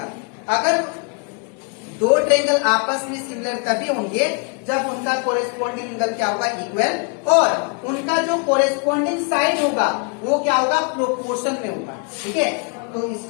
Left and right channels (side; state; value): right; quieter; 36.4 dB